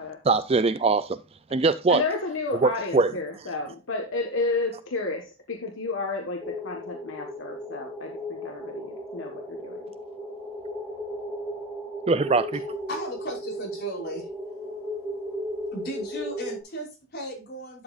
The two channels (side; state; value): both; normal; correlation 0.18